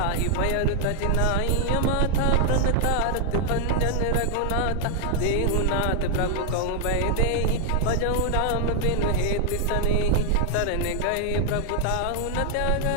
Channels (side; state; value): both; different; correlation 0.00